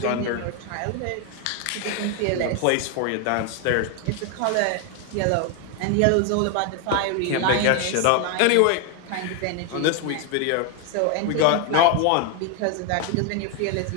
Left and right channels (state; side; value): different; both; correlation 0.01